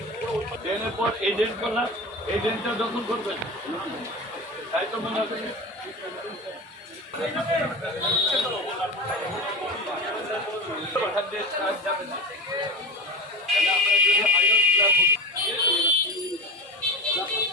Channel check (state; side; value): normal; both; correlation 0.28